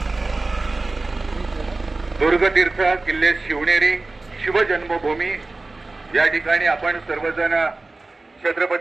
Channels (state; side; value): quieter; left; 3.3 dB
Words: दुर्गतीर्थ किल्ले शिवनेरी शिवजन्मभूमी या ठिकाणी आपण सर्वजण